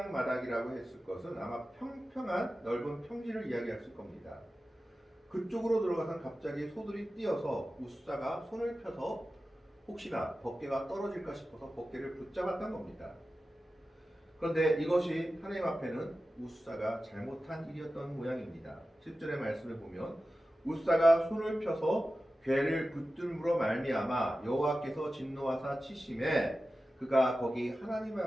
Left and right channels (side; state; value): both; normal; correlation 0.94